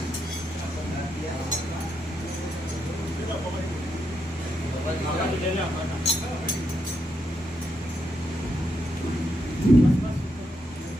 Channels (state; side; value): normal; both; correlation 0.81